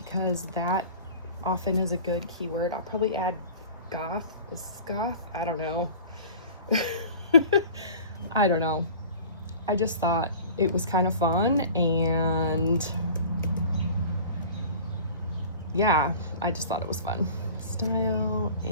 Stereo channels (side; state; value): both; inverted; correlation -0.42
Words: that often is a good keyword. I'll probably add goth. Is goth? I don't know. I don't know. I just thought it was kind of fun, and yeah, I just thought it was fun. Style